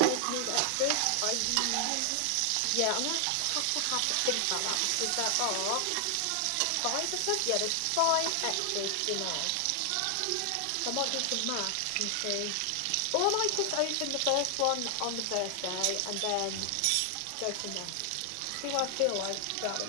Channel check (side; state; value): both; different; correlation 0.00